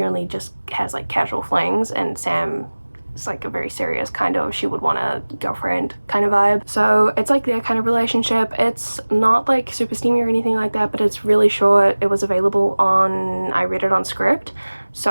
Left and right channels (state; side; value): inverted; both; correlation -1.00